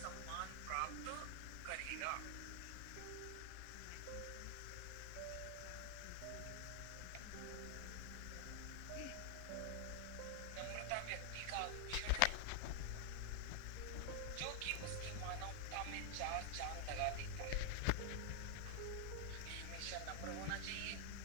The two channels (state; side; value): different; both; correlation 0.00